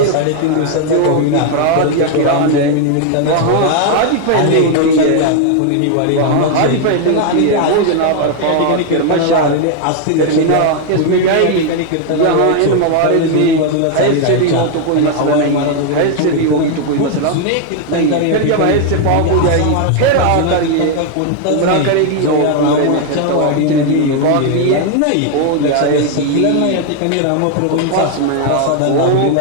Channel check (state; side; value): different; both; correlation 0.00